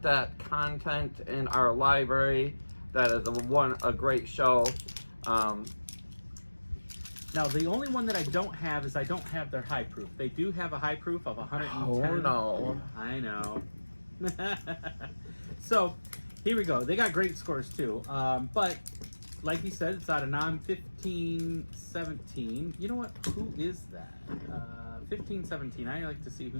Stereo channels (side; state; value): both; inverted; correlation -1.00